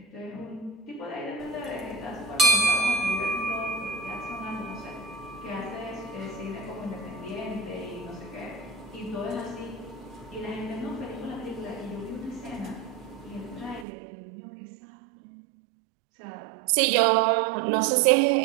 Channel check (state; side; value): drops out; left; at 13.9 s